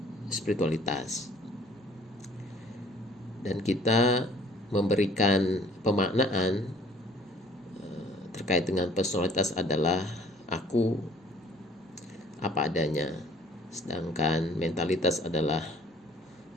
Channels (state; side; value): normal; both; correlation 0.56